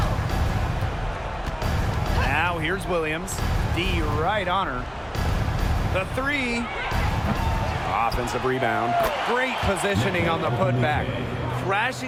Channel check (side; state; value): both; identical; correlation 1.00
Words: Now here's Williams. D right on her. The 3. Offensive rebound. Great positioning on the putback.